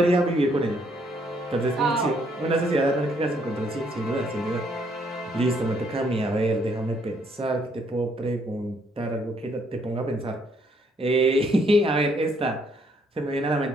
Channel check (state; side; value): normal; both; correlation 0.69